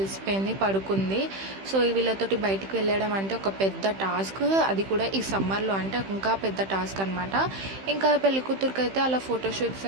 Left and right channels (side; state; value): left; late; 15 ms